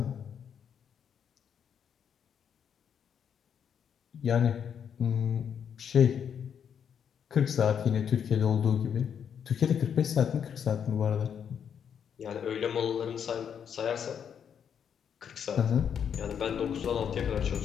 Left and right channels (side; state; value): right; quieter; 7.9 dB